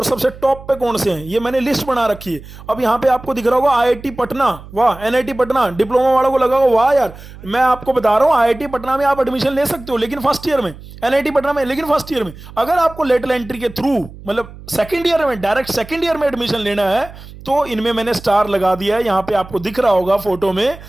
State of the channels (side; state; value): right; noise; hum, 17 dB below the sound